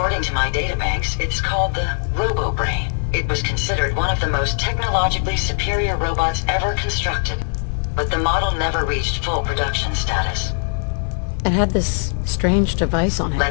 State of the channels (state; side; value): silent; right; digital silence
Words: to my databanks, it's called the Robo-Brain. It was considered one of the most technologically superior robots ever constructed, but the model never reached full production status. It had this strange device on it.